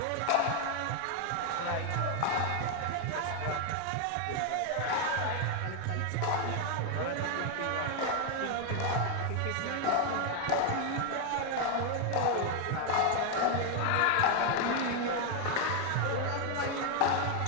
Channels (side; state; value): both; different; correlation 0.01